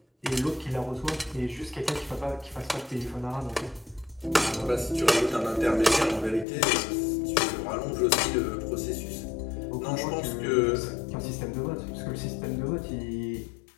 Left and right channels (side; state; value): right; drops out; at 6.5 s